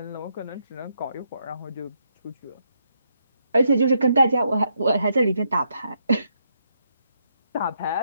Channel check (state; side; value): inverted; both; correlation -0.78